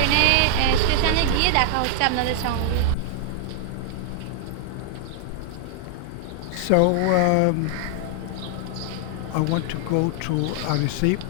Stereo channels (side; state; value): both; different; correlation 0.00